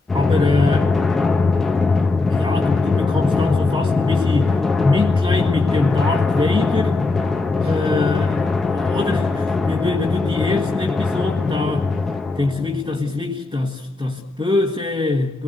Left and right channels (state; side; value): quieter; right; 3.3 dB